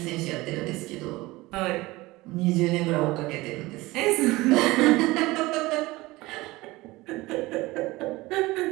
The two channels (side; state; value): left; quieter; 20.4 dB